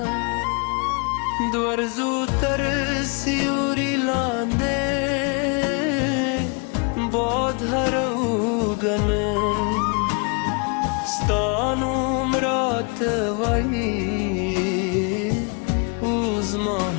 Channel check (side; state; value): right; quieter; 34.2 dB